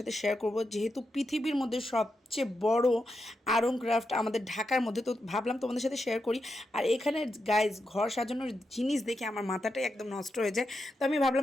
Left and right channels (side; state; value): both; normal; correlation 0.86